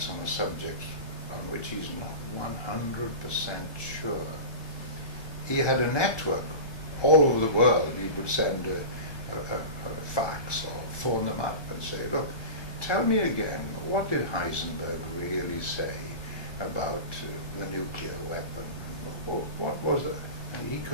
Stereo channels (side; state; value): right; late; 1.2 ms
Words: on a subject on which he's not 100% sure, he had a network all over the world. He would send a fax or phone them up and say, look, tell me again, what did Heisenberg really say about the nuclear weapon? What was it? And he